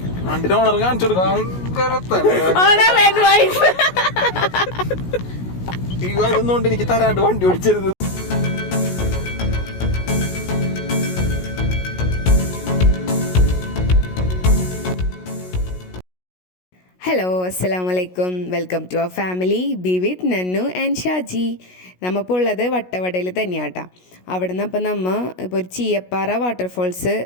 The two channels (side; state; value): right; late; 16 ms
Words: ഓണർ കാണിച്ചു അതൊന്നുകൊണ്ട് എനിക്ക് തരാണ്ട് വണ്ടി ഓടിച്ചരുത്. ഹലോ, അസ്സലാമലൈക്കും. Welcome to our family be with Nannu and Shaji. നമ്മളിപ്പോൾ ഉള്ളത് വട്ടവടയിൽ തന്നെയാട്ടാ. അവിടെ നിന്ന് അപ്പം ഇപ്പോൾ ഒരു ചീയപ്പാറ വാട്ടർഫോൾസ്